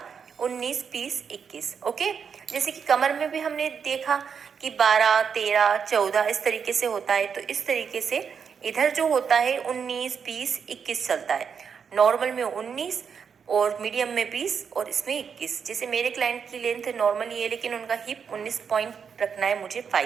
19, 20, 21। ओके, जैसे कि कमर में भी हमने देखा कि 12, 13, 14 इस तरीके से होता है, तो इस तरीके से इधर जो होता है 19, 20, 21 चलता है। नॉर्मल में 19, और मीडियम में 20, और इसमें 21। जैसे मेरे क्लाइंट की लेंथ नॉर्मल ये है, लेकिन उनका हिप 19 पॉइंट रखना है मुझे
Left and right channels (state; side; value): quieter; left; 6.7 dB